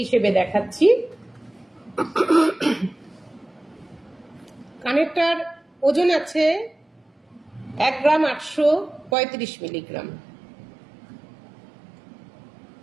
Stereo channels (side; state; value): left; drops out; at 9.2 s